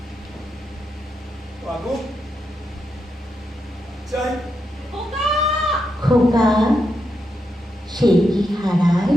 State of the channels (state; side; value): normal; both; correlation 0.84